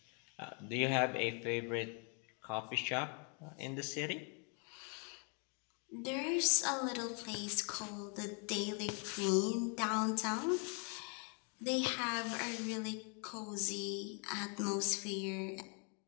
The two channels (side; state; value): right; quieter; 38.2 dB